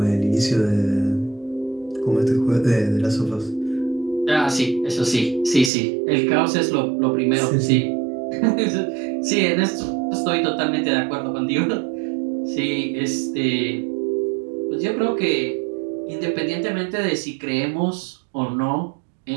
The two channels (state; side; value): drops out; left; at 5.7 s